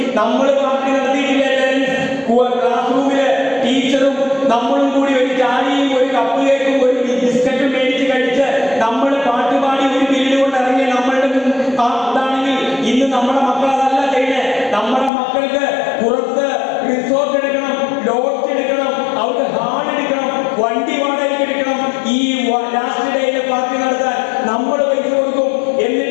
നമ്മൾ പാർട്ടി നടത്തിയിട്ടില്ല. ക്ലാസ് റൂമില് ടീച്ചറും നമ്മളും കൂടി ഒരു ചായയും ഒരു കപ്പ് കേക്കും ഒരു ബിസ്ക്കറ്റും മേടിച്ച് കഴിച്ച് നമ്മൾ പാട്ടുപാടി ഒരു പിരീഡ് കൊണ്ട് ഇറങ്ങിയ നമ്മളുടെ ഇതാണെങ്കിൽ ഇന്ന് നമ്മുടെ മക്കൾ അതല്ല ചെയ്യുന്നത്. നമ്മുടെ മക്കൾക്ക് പുറത്ത് റിസോർട്ട് എടുക്കണം, ലോഡ്ജ് എടുക്കണം, അവർക്ക് ഹാൾ എടുക്കണം, വണ്ടി വാടകയ്ക്ക് എടുക്കണം. ഈ ലാസ്റ്റ് ഡേയിലെ പാർട്ടി നടത്താൻ നമ്മൾ പൈസ കൊടുക്കും.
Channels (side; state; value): right; drops out; at 15.1 s